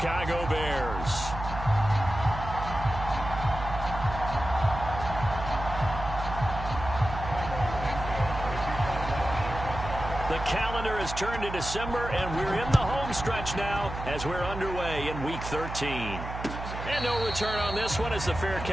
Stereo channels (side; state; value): right; noise; hum, 8 dB below the sound